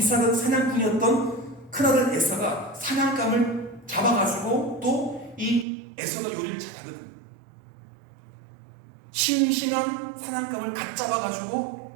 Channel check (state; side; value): drops out; left; at 5.7 s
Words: 사냥꾼이었던 큰아들 에서가 사냥감을 잡아가지고 또 이 에서가 요리를 잘하거든요. 싱싱한 사냥감을 갓